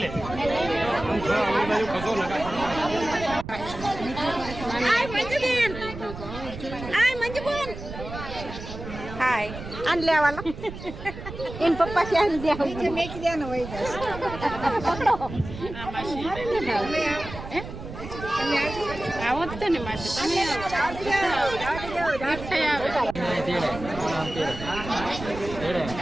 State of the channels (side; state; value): right; noise; rumble, 11 dB below the sound